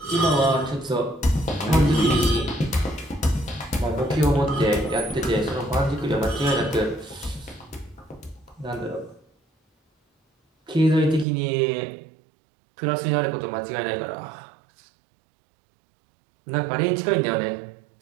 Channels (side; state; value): left; drops out; at 11.2 s